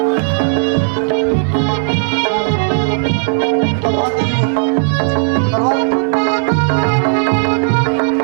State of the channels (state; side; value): silent; left; digital silence